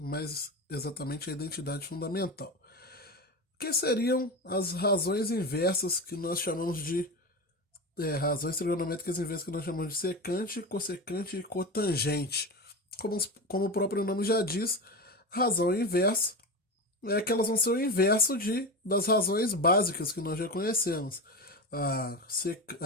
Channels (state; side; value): normal; both; correlation 0.22